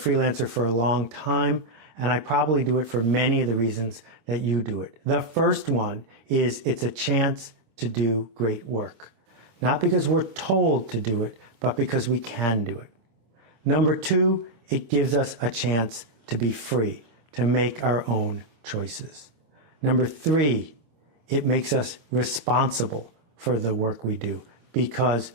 for a long time, and I probably do it for many of the reasons that you do it. The first one is it's a chance to do great work. Not because we're told to do it, but because we can do it. Number two, it gives us a chance to be free, to make our own choices. Number three, it makes us responsible for the work we do because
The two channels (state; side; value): late; left; 26 ms